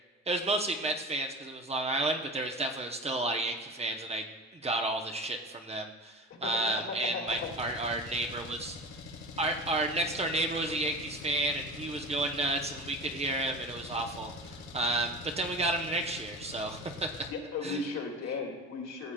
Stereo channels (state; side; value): normal; both; correlation 0.33